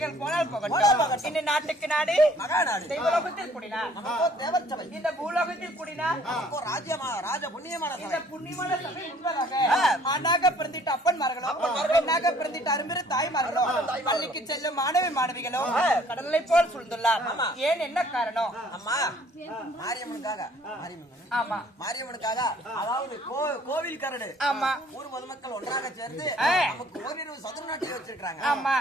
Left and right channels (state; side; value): normal; both; correlation 0.58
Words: போனால் போகட்டும். இந்த நாட்டுக்கு நாடு மகாநாடு. தெய்வலோகத்தில் கூடினார் தேவர் சபை. இந்த பூலோகத்தில் கூடினார் ராஜ புண்ணியமான இந்த புண்ணியமான சபை உண்பதாக ஆணாக பிறந்திட்ட அப்பன்மார்களோ, பெண்ணாக பிறந்திட்ட அரும்பெரு தாய்மார்களோ, பள்ளிக்கு செல்லும் மாணவிகளோ கடலை போல் சூழ்ந்துள்ளார். ஏன், என்ன காரணம்? அம்மா, மாரியம்மனுக்காக. ஆமா, மாரியம்மனுக்காக, அதாவது கோவில் கரடு. ஆமா, ஊர் பொதுமக்கள் ஒன்றாக சேர்ந்து நமக்கு ஓரிரு சதுர நாட்டில் வச்சிருக்காங்க. ஆமா